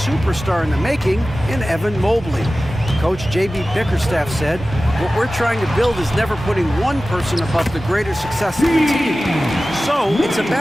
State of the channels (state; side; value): normal; both; correlation 0.96